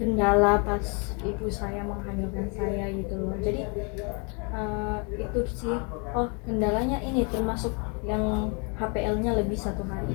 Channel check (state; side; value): quieter; right; 34.9 dB